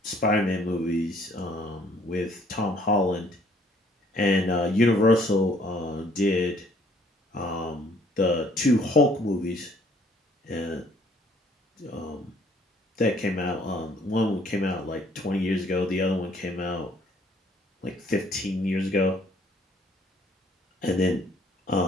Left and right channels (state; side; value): normal; both; correlation 0.62